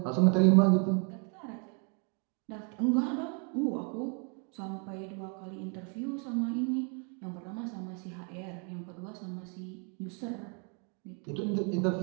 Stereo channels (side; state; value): left; quieter; 38.2 dB